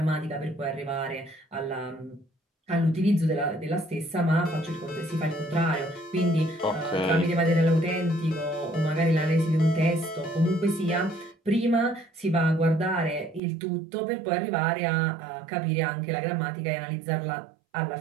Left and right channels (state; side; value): drops out; left; at 13.4 s